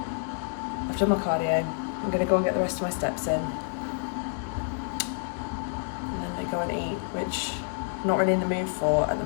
I've done my cardio, I'm going to go and get the rest of my steps in, and then they go and eat, which I'm not really in the mood for at the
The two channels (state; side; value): silent; right; digital silence